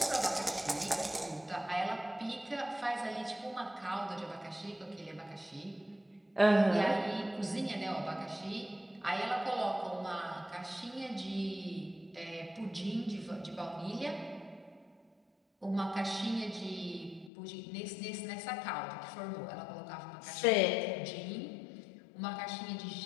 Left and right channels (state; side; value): drops out; right; at 17.3 s